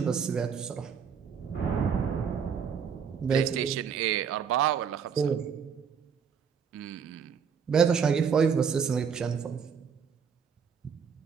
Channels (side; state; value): left; quieter; 6.8 dB